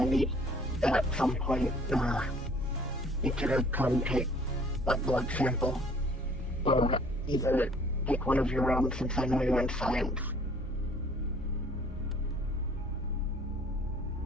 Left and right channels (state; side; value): normal; both; correlation 0.56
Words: meet at some point, you could come take a blood sample, or either take one of your own since I know you're in science.